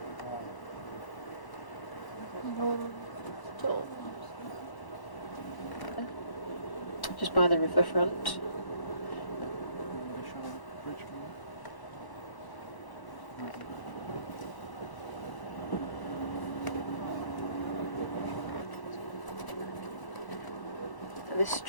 Just by the riverfront. This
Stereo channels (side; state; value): right; late; 1.0 ms